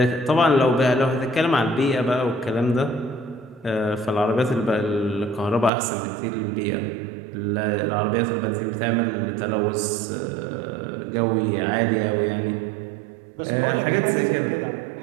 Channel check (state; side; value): drops out; left; at 5.7 s